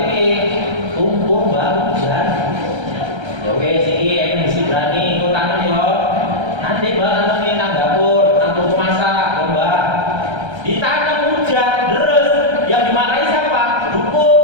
kumpul Mbak, hujan. Ya wes, ini mesti berani ikut tangan yo. Nanti Mbak nanti nang dapur, nang tunggu masak, Mbak. Di tangan hujan, deres, yang dimarahin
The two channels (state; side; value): late; left; 1.3 ms